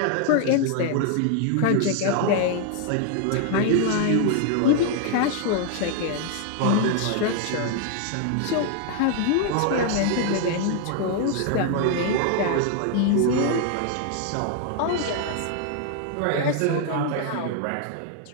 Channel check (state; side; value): different; both; correlation 0.00